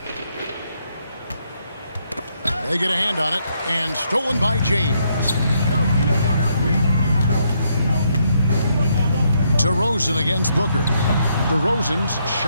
They get a hand on it, and stolen by James. DeRozan against Booker. DeRozan's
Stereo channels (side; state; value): both; inverted; correlation -0.75